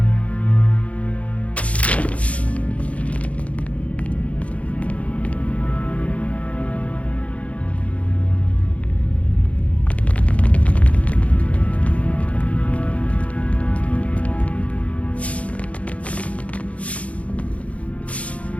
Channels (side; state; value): right; late; 0.065 ms